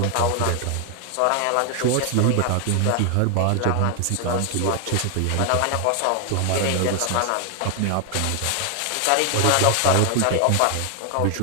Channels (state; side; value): different; both; correlation 0.00